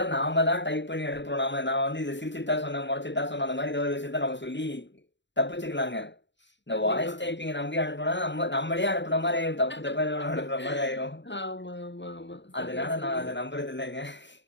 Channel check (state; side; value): late; right; 0.52 ms